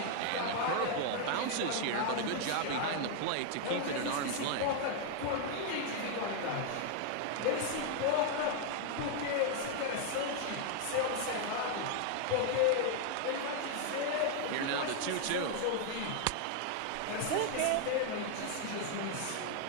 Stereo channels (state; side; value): different; both; correlation 0.00